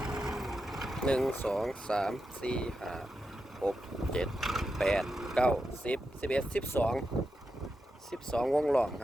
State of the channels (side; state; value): both; normal; correlation 0.88